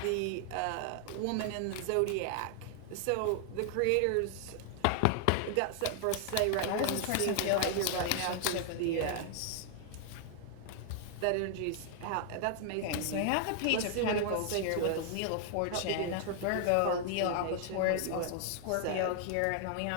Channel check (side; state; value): both; different; correlation 0.00